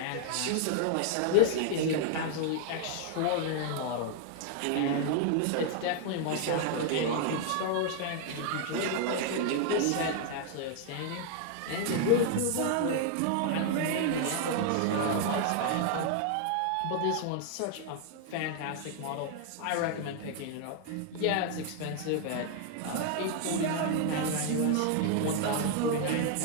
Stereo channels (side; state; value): both; different; correlation 0.00